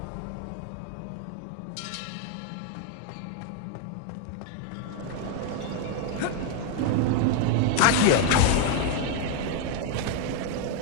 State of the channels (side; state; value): both; different; correlation 0.00